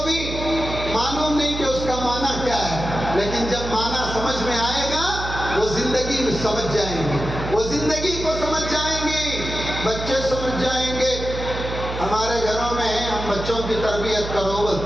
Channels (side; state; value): right; noise; hum, 7 dB below the sound